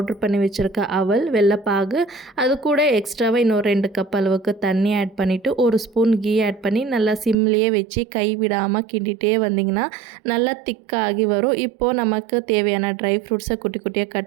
பண்ணி வச்சுருக்க அவல், வெல்லப்பாகு, அது கூட எக்ஸ்ட்ராவாக இன்னொரு 2 கப் அளவுக்கு தண்ணி ஆட் பண்ணிவிட்டு 1 ஸ்பூன் கீ ஆட் பண்ணி நல்லா சிம்லேயே வச்சு கை விடாமல் கிண்டிகிட்டே வந்திங்கன்னா நல்லா திக்காகி வரும். இப்போது நமக்கு தேவையான ட்ரை ஃப்ரூட்ஸை குட்டி குட்டியாக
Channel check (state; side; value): drops out; left; at 7.4 s